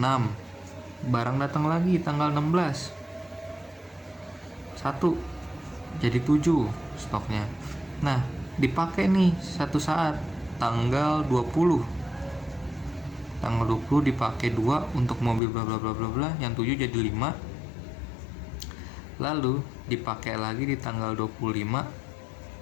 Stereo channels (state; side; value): drops out; right; at 15.4 s